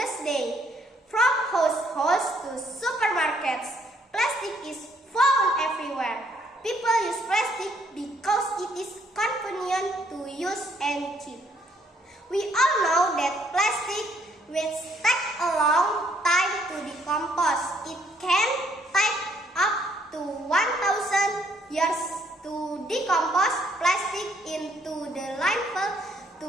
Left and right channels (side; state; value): both; normal; correlation 0.68